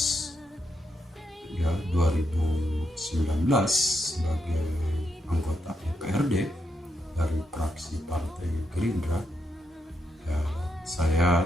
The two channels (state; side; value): normal; both; correlation 0.82